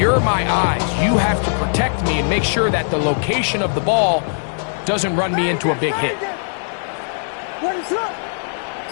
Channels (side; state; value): right; silent; 63 dB below the other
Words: my eyes. You have to protect me and make sure that the location of the ball doesn't run me into a big hit. What is that?